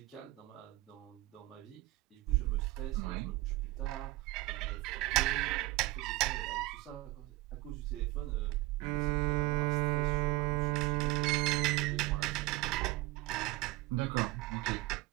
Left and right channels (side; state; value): left; quieter; 19.9 dB